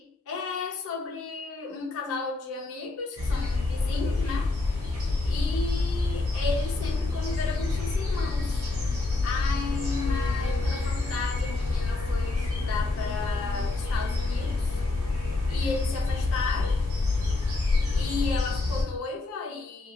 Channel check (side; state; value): right; quieter; 3.1 dB